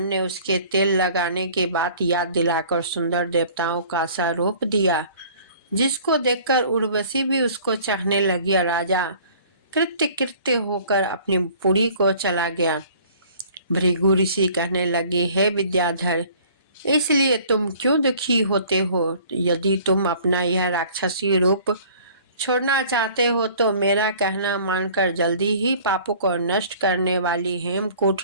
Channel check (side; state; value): both; inverted; correlation -0.51